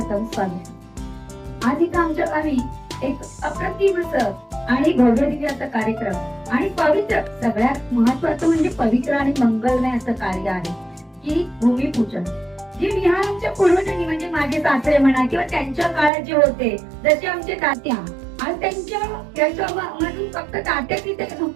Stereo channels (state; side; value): drops out; left; at 16.1 s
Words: स्वागतम. आज इथं आमच्या गावी एक अप्रतिम असं आणि भव्य दिव्य असं कार्यक्रम आणि पवित्र, सगळ्यात महत्वाचं म्हणजे पवित्र आणि मंगलमय असं कार्य आहे की भूमिपूजन. जे विहार आमच्या पूर्वजांनी म्हणजे माझे सासरे म्हणा किंवा त्यांच्या काळात जे होते, जसे आमचे तात्या, आज त्याच्यामधून फक्त तात्याच इथे